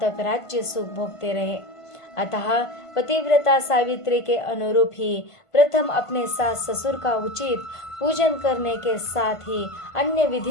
तक राज्य सुख भोगते रहे। अतः पतिव्रता सावित्री के अनुरूप ही प्रथम अपने सास ससुर का उचित पूजन करने के साथ ही अन्य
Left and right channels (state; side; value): late; right; 1.5 ms